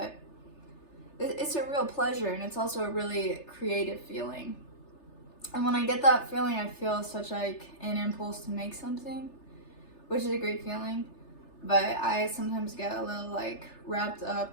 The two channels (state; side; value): late; right; 3.3 ms